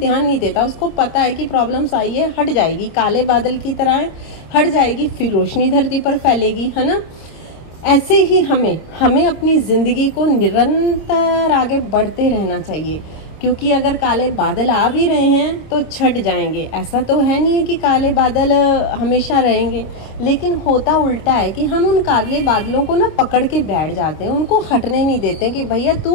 नहीं देता। उसको पता है कि प्रॉब्लम्स आई है, हट जाएगी, काले बादल की तरह है, हट जाएगी, फिर रोशनी धरती पर फैलेगी, है ना। ऐसे ही हमें अपनी ज़िंदगी को निरंतर आगे बढ़ते रहना चाहिए, क्योंकि अगर काले बादल आ भी रहे हैं तो छट जाएंगे। ऐसा तो है नहीं है कि काले बादल हमेशा रहेंगे, लेकिन होता उल्टा है कि हम उन काले बादलों को ना पकड़ के बैठ जाते हैं, उनको हटने नहीं देते कि भैया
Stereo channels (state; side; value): late; right; 26 ms